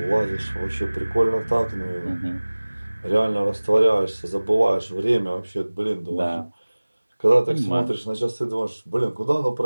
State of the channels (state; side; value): inverted; both; correlation -1.00